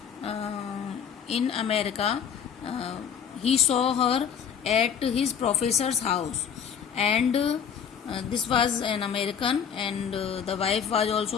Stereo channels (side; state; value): right; quieter; 7.7 dB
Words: in America, he saw her at his professor's house, and this was an American, and the wife was